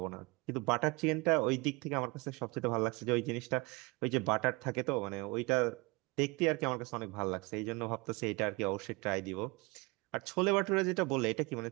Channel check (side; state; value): left; quieter; 25.9 dB